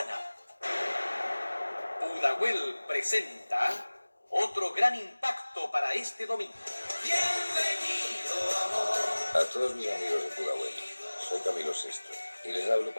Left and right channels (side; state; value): both; inverted; correlation -1.00